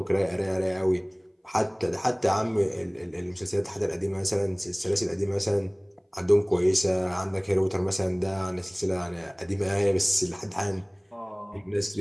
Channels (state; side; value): identical; both; correlation 1.00